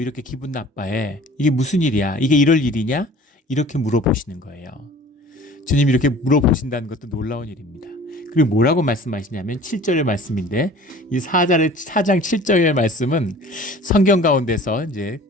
이렇게 기분 나빠해? 이게 무슨 일이야? 이게 이럴 일이냐? 이렇게 물어보시는 거예요. 주님이 이렇게 물어보신다는 것도 놀라운 일입니다. 그리고 뭐라고 말씀하시냐면 7절의 말씀인데, 이 4장 7절의 말씀은 성경 가운데서 이제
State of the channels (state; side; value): normal; both; correlation 0.46